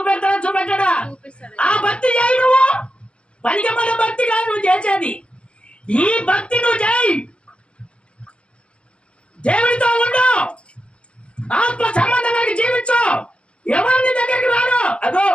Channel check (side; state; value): right; late; 0.058 ms